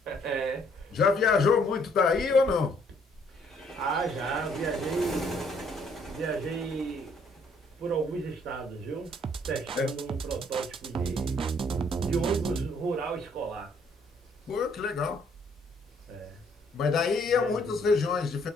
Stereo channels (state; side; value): normal; both; correlation 0.65